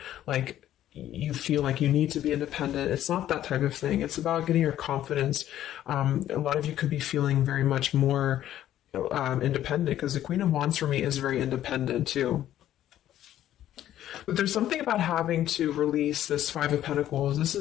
like, you feel like you need to be independent. It's not that type of thing. It's about getting your confidence. A lot of you could be feeling very much more independent, because the Queen of Wands for me is very independent too. But there's something about having to release this Five of Pentacles. This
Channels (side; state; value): right; quieter; 12.2 dB